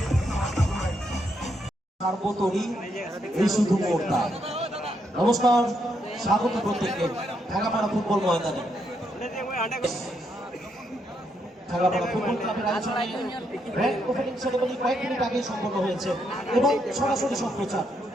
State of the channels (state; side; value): normal; both; correlation 0.78